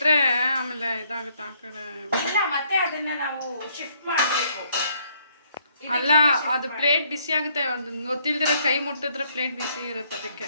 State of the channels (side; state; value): both; inverted; correlation -0.68